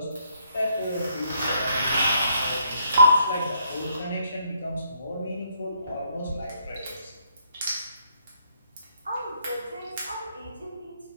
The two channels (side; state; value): both; inverted; correlation -0.71